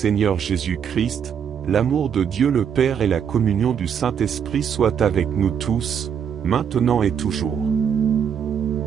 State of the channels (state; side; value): quieter; left; 7.9 dB